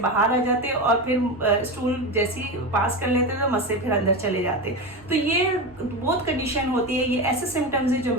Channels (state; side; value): normal; both; correlation 0.20